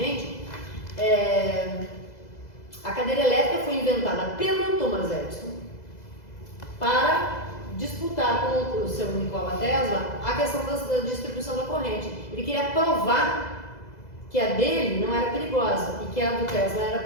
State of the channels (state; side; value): late; right; 2.0 ms